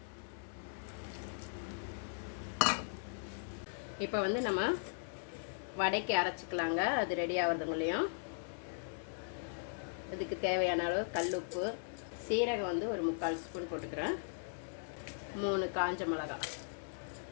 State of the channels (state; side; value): silent; right; digital silence